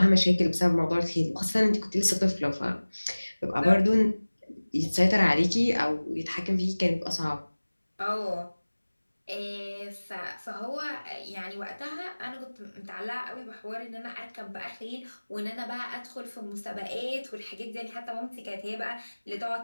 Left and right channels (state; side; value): inverted; both; correlation -1.00